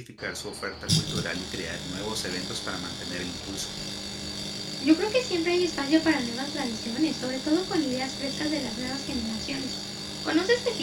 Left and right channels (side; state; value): both; identical; correlation 1.00